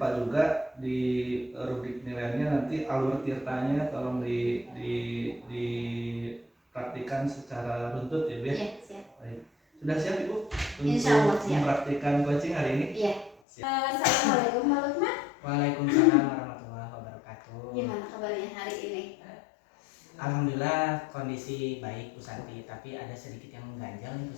juga di rubrik penilaiannya nanti alur tirtanya tolong dipraktikkan secara runtut ya Bu ya. Iya, siap. Baik. Sudah siap Ibu Insya Allah untuk siap. mempraktikkan coaching hari ini? Iya. Siap. Assalamualaikum Pak Lukman. Waalaikumsalam warahmatullahi wabarakatuh. Gimana kabarnya hari ini? Alhamdulillah kondisi baik Bu Santi, tapi ada sedikit yang mengganjal nih Bu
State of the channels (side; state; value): right; drops out; at 13.4 s